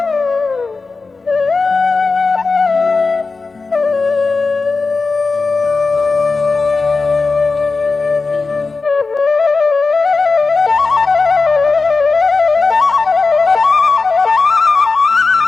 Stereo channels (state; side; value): quieter; right; 4.1 dB